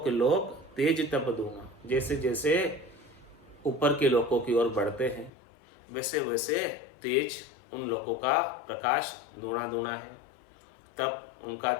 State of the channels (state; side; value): drops out; right; at 5.3 s